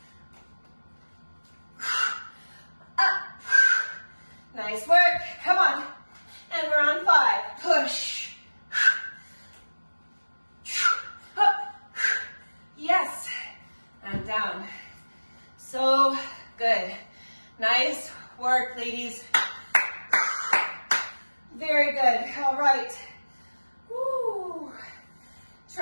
Up. Nice work. Come on. And we're on 5. Push. Up. Yes. And down. So good. Nice work, ladies. Very good. All right. Woo.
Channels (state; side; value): inverted; both; correlation -1.00